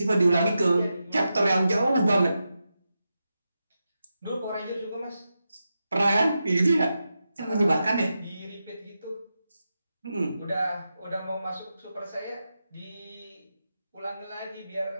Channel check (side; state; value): both; inverted; correlation -0.89